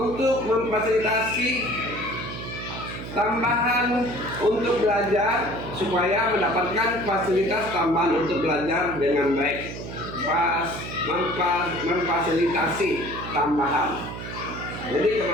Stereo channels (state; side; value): noise; right; hum, 9 dB below the sound